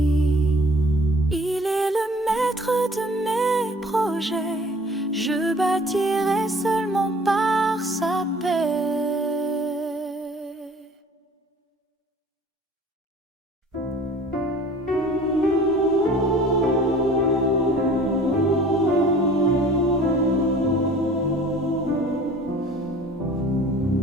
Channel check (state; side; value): normal; both; correlation 0.49